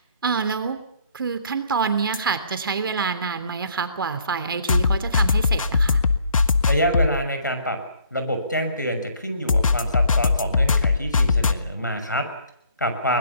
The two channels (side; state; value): both; inverted; correlation -0.63